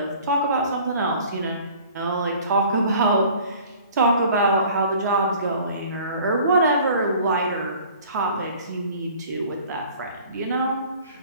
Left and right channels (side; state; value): both; inverted; correlation -0.50